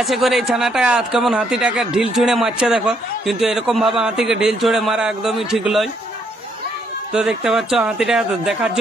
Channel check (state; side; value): normal; both; correlation 0.72